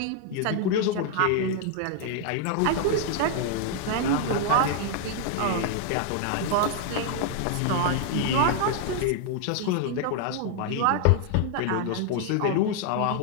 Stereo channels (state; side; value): different; both; correlation 0.00